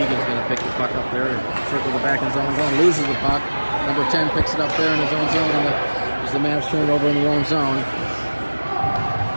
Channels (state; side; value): inverted; both; correlation -1.00